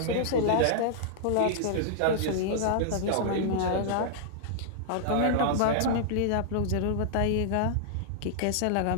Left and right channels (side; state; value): both; different; correlation -0.01